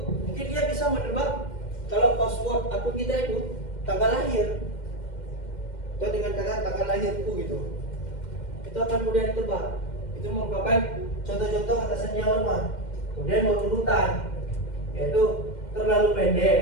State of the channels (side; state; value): right; late; 2.1 ms